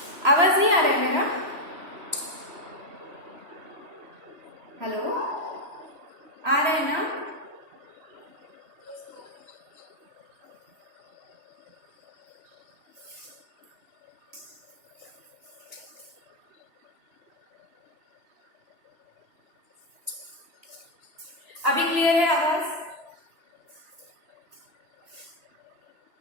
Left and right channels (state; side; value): late; left; 3.1 ms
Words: आवाज नहीं आ रहा है मेरा? हेलो, आ रहा है ना? अभी क्लियर है आवाज?